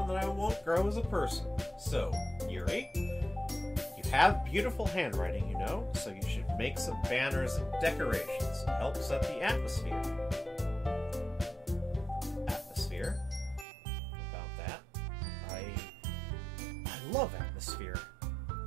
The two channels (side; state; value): left; drops out; at 13.7 s